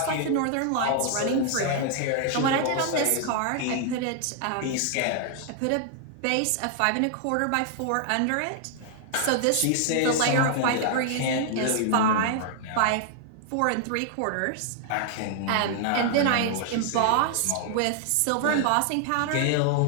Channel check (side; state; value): both; different; correlation 0.00